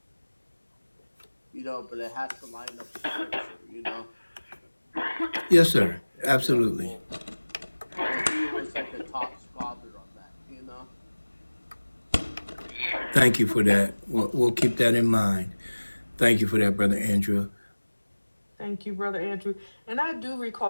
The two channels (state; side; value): inverted; both; correlation -1.00